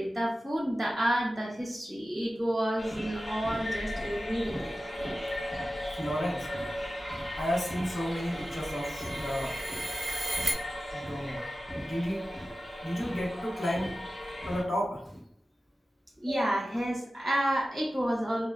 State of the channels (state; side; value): normal; both; correlation 0.94